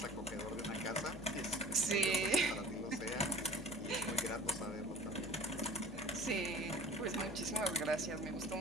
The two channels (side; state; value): left; noise; hum, 13 dB below the sound